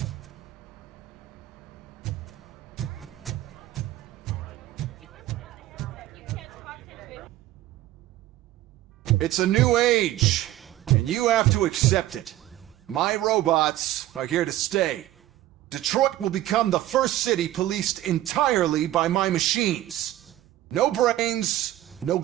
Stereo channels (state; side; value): quieter; left; 14.5 dB